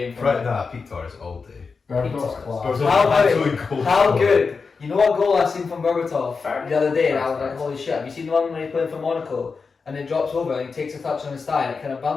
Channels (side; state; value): right; quieter; 4.9 dB